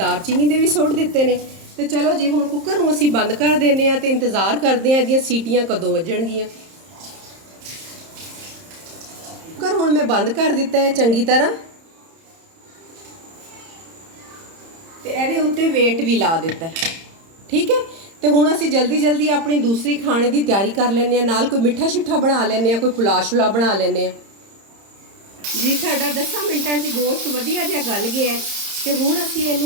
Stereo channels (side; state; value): left; late; 30 ms